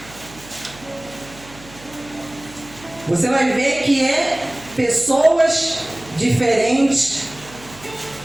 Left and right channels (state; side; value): noise; right; hum, 21 dB below the sound